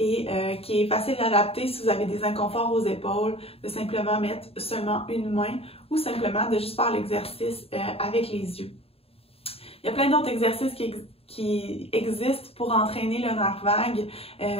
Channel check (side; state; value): right; late; 0.28 ms